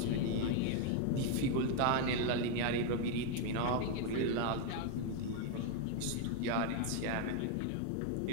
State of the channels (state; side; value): different; both; correlation 0.01